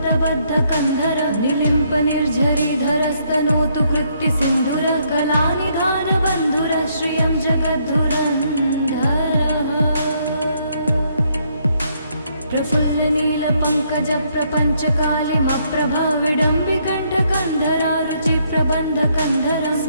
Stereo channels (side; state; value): both; inverted; correlation -0.71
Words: निलिम्प निर्झरीधरस्तनोतु कृत्ति सिन्धुर कलानिधानबन्धुर श्रियं जगद्धुरन्धरः प्रफुल्लनीलपङ्कजप्रपञ्चकालिमप्रभा विडम्बिकण्ठकन्धरा रुचिप्रबन्धकन्धरं